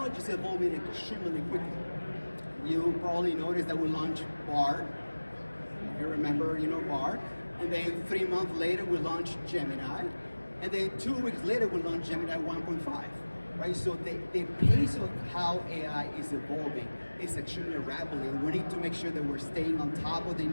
is evolving extremely quickly. You probably noticed that we launched Bard. You remember, Bard. And then 3 months later, we launched Gemini. And then 2 weeks later, we launched Gemini 1.5. Right? So the pace of how AI is evolving is extremely rapidly. We need to make sure that we're staying on top of the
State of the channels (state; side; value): inverted; both; correlation -1.00